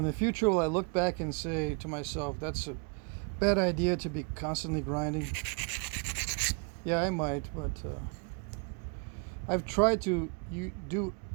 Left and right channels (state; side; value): quieter; left; 35.6 dB